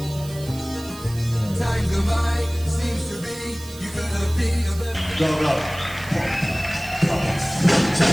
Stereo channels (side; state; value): right; noise; hiss, 17 dB below the sound